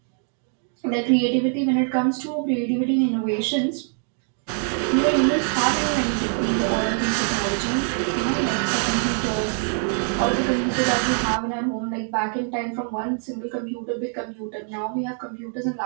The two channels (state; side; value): silent; left; 56 dB below the other